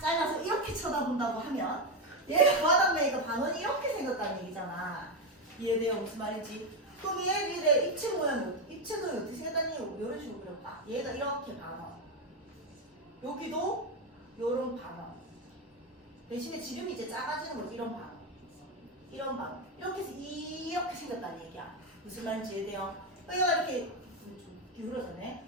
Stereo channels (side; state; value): both; normal; correlation 0.09